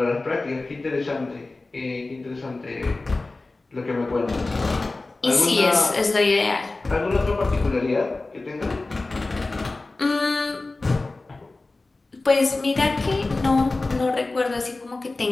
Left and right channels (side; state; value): right; quieter; 3.3 dB